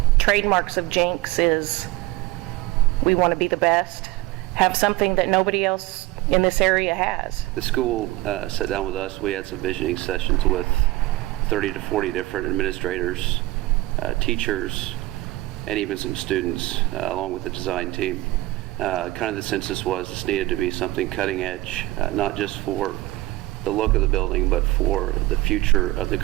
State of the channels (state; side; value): quieter; left; 18.8 dB